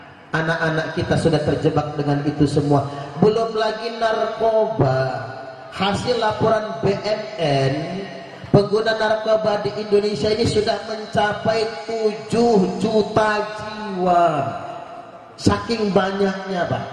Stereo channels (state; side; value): identical; both; correlation 1.00